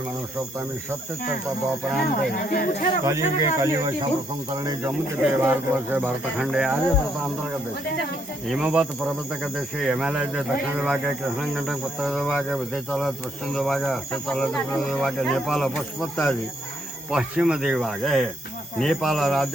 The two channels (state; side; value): normal; both; correlation 0.73